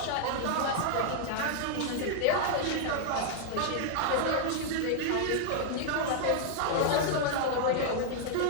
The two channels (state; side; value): different; both; correlation 0.00